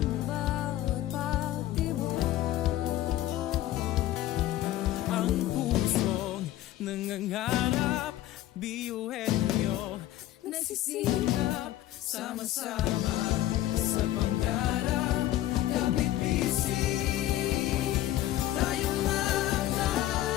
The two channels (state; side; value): quieter; right; 14.1 dB